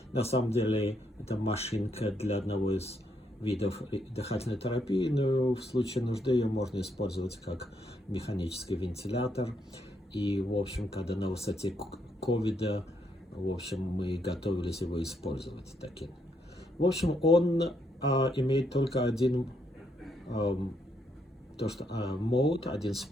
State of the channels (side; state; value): both; normal; correlation 0.75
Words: на самом деле это машинка для одного из видов дыхательной терапии, но в случае нужды ее можно использовать как механический вентилятор. И, в общем, когда на высоте ковида, в общем, мы готовились его использовать таким. В общем, он имеет только один мод, один